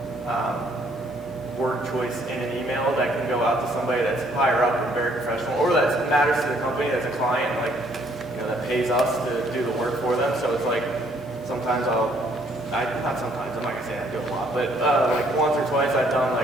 word choice in an email that can go out to somebody that's higher up and very professional, or that matters to the company that's a client, like, that pays us to do the work for them. So it's like sometimes not sometimes, I'm not gonna say I do a lot, but like once or twice I've done,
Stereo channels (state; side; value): normal; both; correlation 0.65